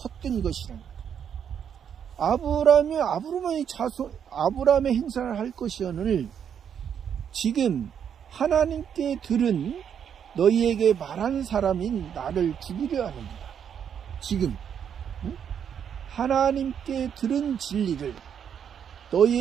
것이다. 아브라함의 행사를 할 것이오늘 지금 하나님께 들은 너희에게 말한 사람인 나를 죽이려 하는다. 지금 하나님께 들은 진리를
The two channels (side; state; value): left; quieter; 8.2 dB